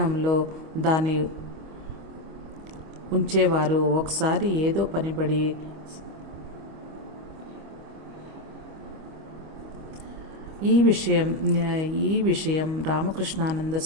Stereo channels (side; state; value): left; late; 25 ms